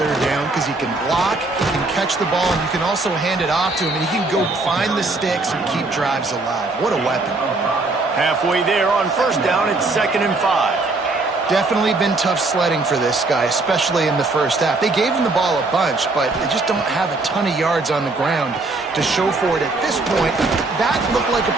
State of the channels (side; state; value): left; quieter; 3.3 dB